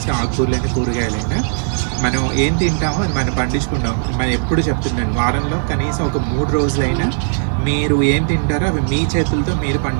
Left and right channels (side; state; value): left; silent; digital silence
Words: ఆకుకూరలైనా కూరగాయలైనా మనం ఏం తింటామో అది మనం పండించుకుంటాం. మనం ఎప్పుడు చెప్తున్నాను, వారంలో కనీసం ఒక 3 రోజులైనా మీరు ఏం తింటారో అవి మీ చేతులతో మీరు